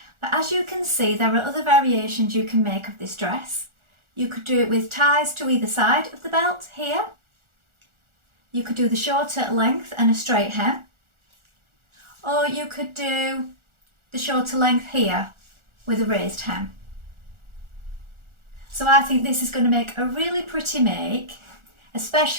But as you can see, there are other variations you can make of this dress. You could do it with ties to either side of the belt here. You could do the shorter length and a straight hem, or you could do the shorter length here with a raised hem. So I think this is going to make a really pretty make,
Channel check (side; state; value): left; late; 1.4 ms